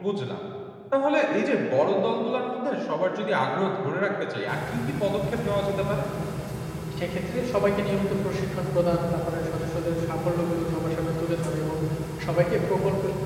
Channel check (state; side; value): identical; both; correlation 1.00